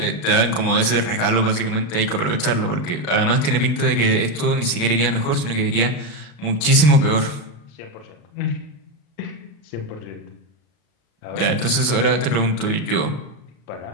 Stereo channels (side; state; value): right; late; 35 ms